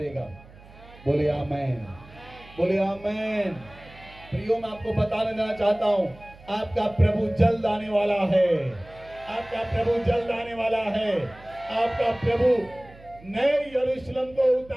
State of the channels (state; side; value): noise; right; hum, 22 dB below the sound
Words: बोले आमेन, बोले आमेन। प्रियो, मैं आपको बताने देना चाहता हूं, आपका प्रभु जल्द आने वाला है। आपका प्रभु जल्द आने वाला है। आपका प्रभु नए यरूशलेम को